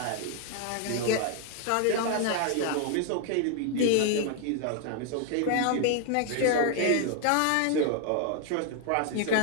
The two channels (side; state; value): both; different; correlation 0.01